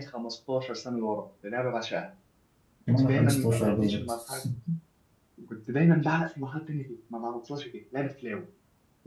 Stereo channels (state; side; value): identical; both; correlation 1.00